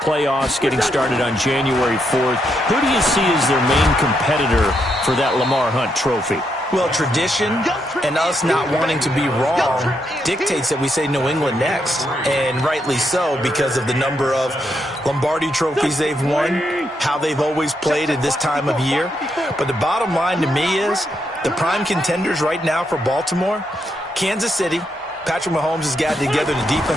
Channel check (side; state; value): both; normal; correlation 0.80